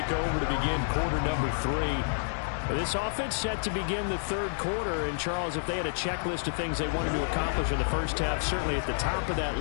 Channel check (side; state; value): right; silent; 58 dB below the other